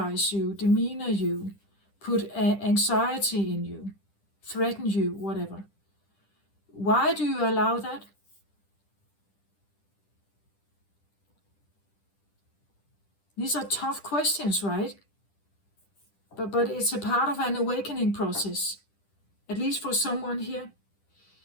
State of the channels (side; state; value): right; late; 10 ms